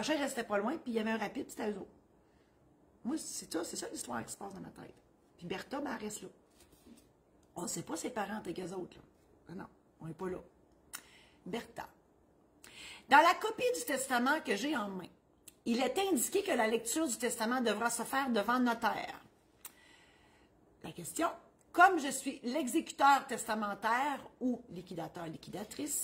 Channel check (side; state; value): both; identical; correlation 1.00